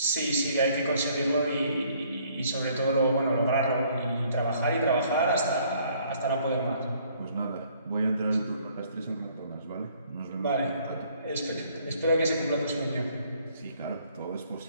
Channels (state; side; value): inverted; both; correlation -0.62